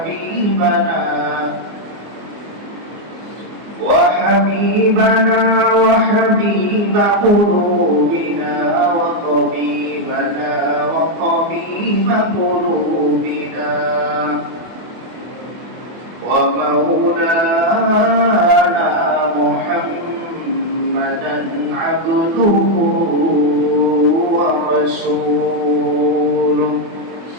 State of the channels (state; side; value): late; left; 24 ms